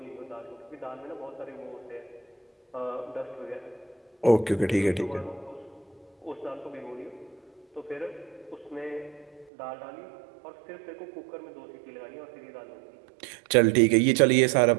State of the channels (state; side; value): drops out; left; at 9.5 s